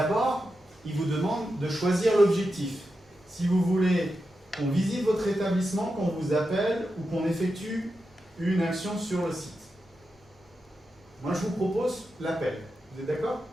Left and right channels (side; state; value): both; normal; correlation 0.89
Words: il vous demande de choisir l'objectif. Si vous voulez qu'on visite votre établissement, qu'on vous appelle ou qu'on effectue une action sur le site. Moi, je vous propose l'appel. Vous êtes d'accord?